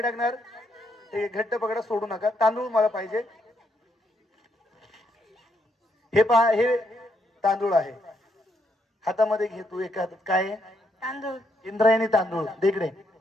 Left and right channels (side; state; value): both; normal; correlation 0.76